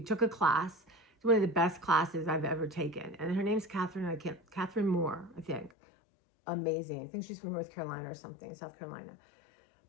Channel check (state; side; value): drops out; right; at 5.7 s